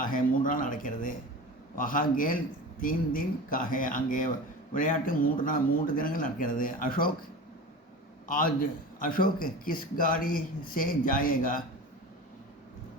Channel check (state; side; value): normal; both; correlation 0.32